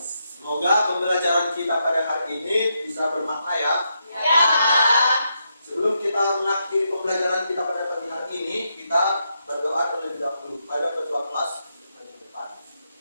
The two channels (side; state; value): both; inverted; correlation -0.82